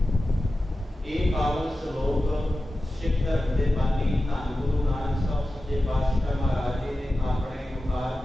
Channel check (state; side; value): normal; both; correlation 0.93